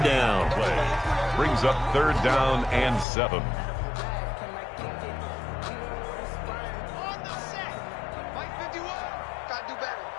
down. Brings up third down and 7.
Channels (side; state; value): right; drops out; at 3.1 s